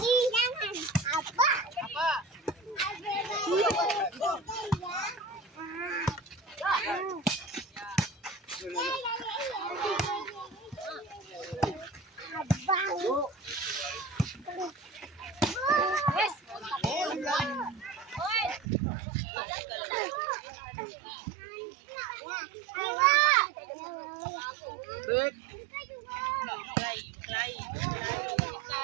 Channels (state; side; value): drops out; left; at 18.7 s